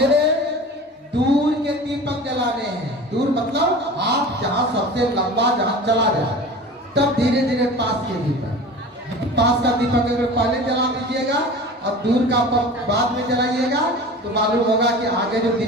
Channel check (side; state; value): both; normal; correlation 0.37